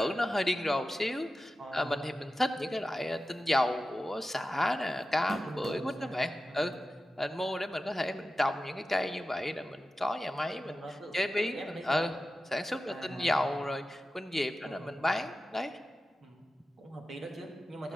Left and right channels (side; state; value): both; normal; correlation 0.93